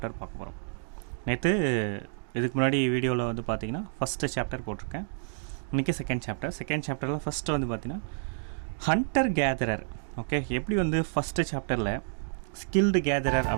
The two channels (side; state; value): left; silent; digital silence